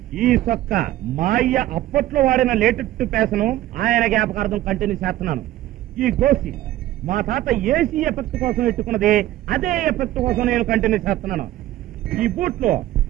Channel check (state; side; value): quieter; left; 14.7 dB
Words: ఈ సొక్క మా అయ్య అప్పట్లో వాడిన లేటెస్ట్ పేసను ఆయన జ్ఞాపకార్థం కంటిన్యూ చేస్తున్నాను. ఈ గోసి మా తాత ఏసీ ఎఫెక్ట్ కోసం ఎట్టుకున్నది, అదే ఎఫెక్ట్ కోసం నేను కంటిన్యూ చేస్తున్నాను. ఈ బూట్లో